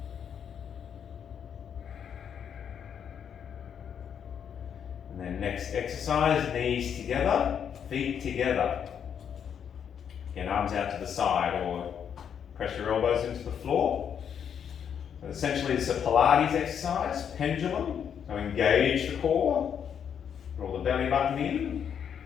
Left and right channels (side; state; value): right; quieter; 8.1 dB